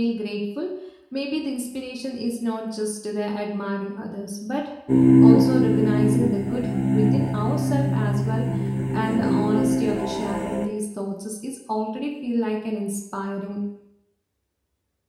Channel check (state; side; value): identical; both; correlation 1.00